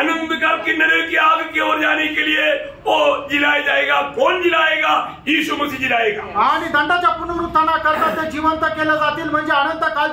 काल की नरक की आग की ओर जाने के लिए वो जिलाया जाएगा। कौन जिलाएगा? यीशु मसीह जिलाएगा। आणि दंडाच्या पुनरुत्थानाकरता ते जिवंत केले जातील, म्हणजे अनंत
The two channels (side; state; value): both; identical; correlation 1.00